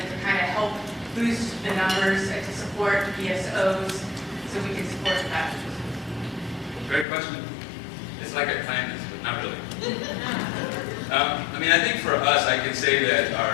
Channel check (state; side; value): drops out; right; at 7.1 s